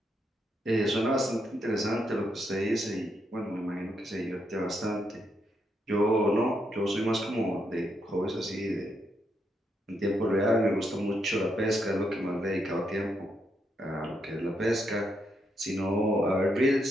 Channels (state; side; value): normal; both; correlation 0.79